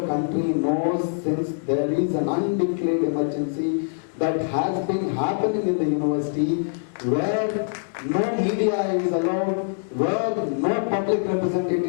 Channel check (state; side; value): silent; right; 62 dB below the other